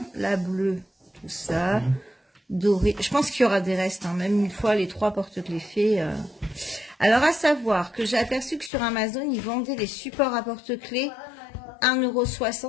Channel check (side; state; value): right; drops out; at 8.7 s